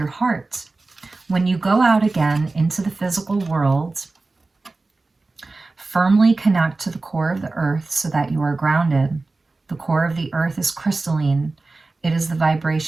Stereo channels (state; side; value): quieter; left; 3.4 dB